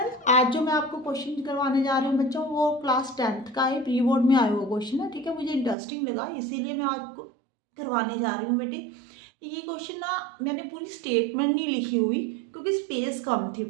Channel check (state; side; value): drops out; left; at 5.8 s